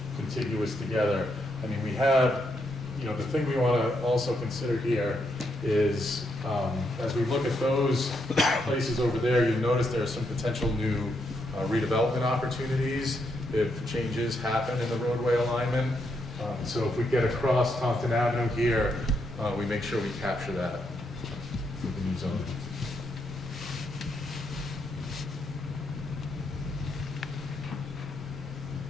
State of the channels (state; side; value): normal; both; correlation 0.79